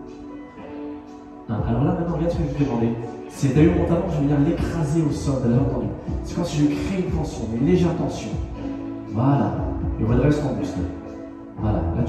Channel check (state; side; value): identical; both; correlation 1.00